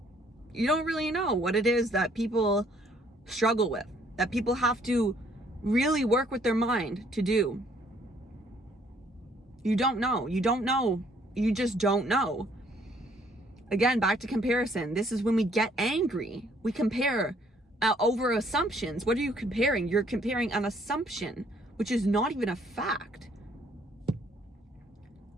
You don't really know what it is that people struggle with, that people have to really work with their mind to do. You don't know. You don't know. You just don't know. Again, back to comparison. This is when we get angry. We compare over assumptions. What are you comparing? You're comparing an assumption, which is not even a fact.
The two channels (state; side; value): normal; both; correlation 0.64